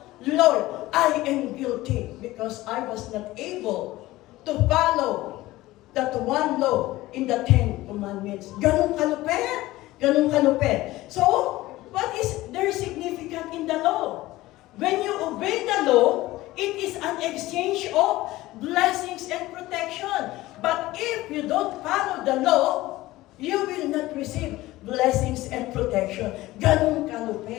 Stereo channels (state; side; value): quieter; right; 17.7 dB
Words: Lord, I am guilty because I was not able to follow that one law in the 10 Commandments. Ganun kalupit. Ganun kalupit. So, what is there significant in the law? When you obey the law, it is an exchange of blessings and protection. But if you don't follow the law, you will not receive blessings and protection. Ganun